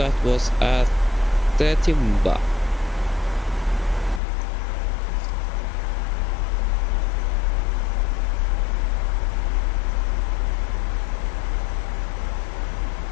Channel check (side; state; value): right; drops out; at 4.2 s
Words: was at the Timba.